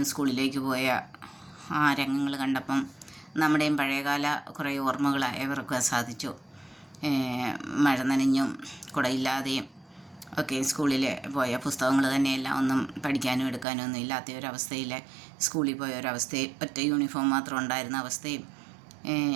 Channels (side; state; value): left; drops out; at 13.7 s